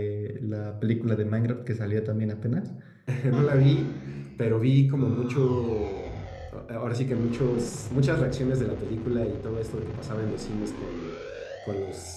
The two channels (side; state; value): both; identical; correlation 1.00